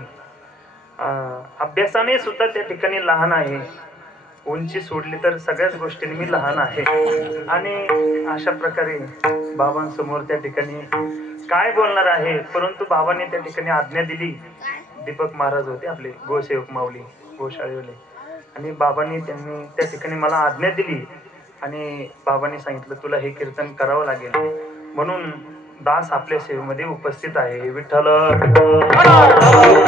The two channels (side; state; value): both; normal; correlation 0.64